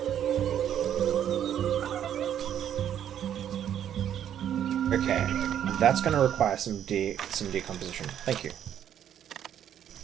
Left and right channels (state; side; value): quieter; left; 10.0 dB